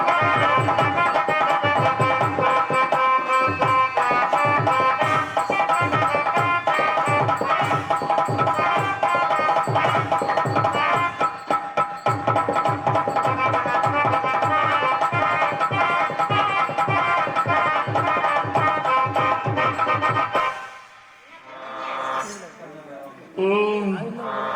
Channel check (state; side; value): identical; both; correlation 1.00